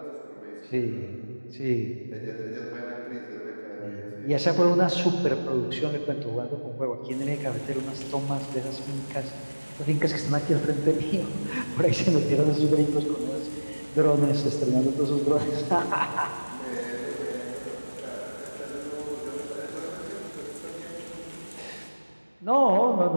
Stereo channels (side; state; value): both; inverted; correlation -1.00